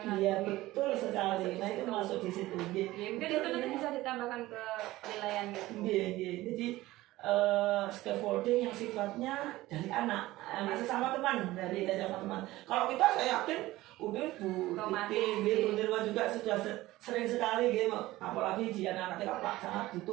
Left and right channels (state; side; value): quieter; left; 17.5 dB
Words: Iya betul sekali. Nah itu masuk di situ. Mungkin itu nanti bisa ditambahkan ke penilaian gitu. Iya. Jadi scaffolding yang sifatnya dari anak sesama teman, dari sesama teman. Kalau kita saya yakin udah Bu Nirma juga sudah sering sekali gitu, apalagi di anak-anak TK sangat